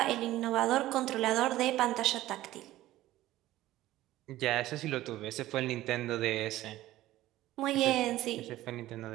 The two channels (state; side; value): quieter; left; 15.5 dB